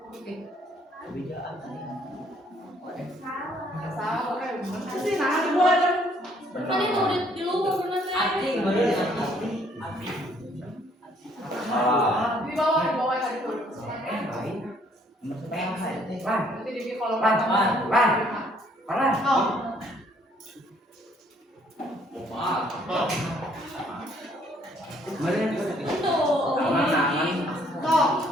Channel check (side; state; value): both; normal; correlation 0.64